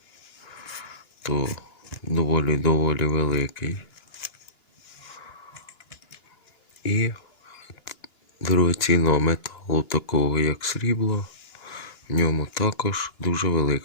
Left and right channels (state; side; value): late; right; 2.9 ms